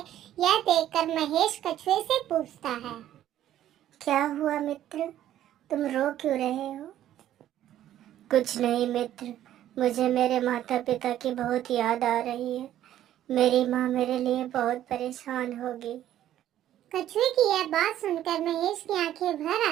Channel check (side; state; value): left; quieter; 12.2 dB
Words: यह देखकर महेश कछुए से पूछता है, क्या हुआ मित्र, तुम रो क्यों रहे हो? कुछ नहीं मित्र, मुझे मेरे माता पिता की बहुत याद आ रही है। मेरी माँ मेरे लिए बहुत परेशान होगी। कछुए की यह बात सुनकर महेश की आंखें भर